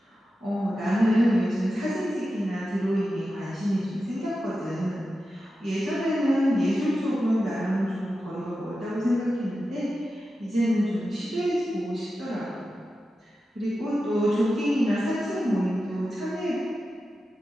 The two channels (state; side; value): normal; both; correlation 0.91